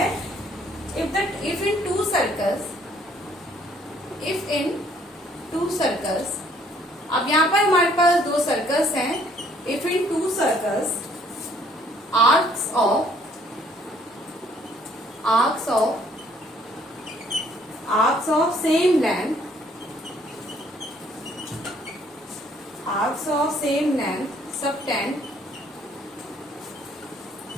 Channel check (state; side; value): normal; both; correlation 0.63